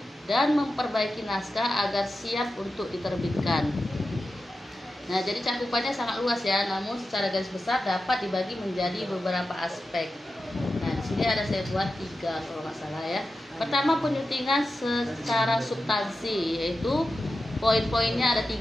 dan memperbaiki naskah agar siap untuk diterbitkan. Nah, jadi cakupannya sangat luas ya, namun secara garis besar dapat dibagi menjadi beberapa aspek. Nah, di sini ada saya buat 3 kalau nggak salah ya. Pertama, penyuntingan secara substansi, yaitu poin-poinnya ada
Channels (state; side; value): normal; both; correlation 0.92